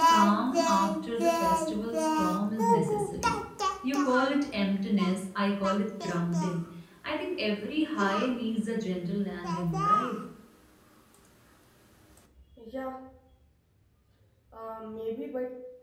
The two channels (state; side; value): identical; both; correlation 1.00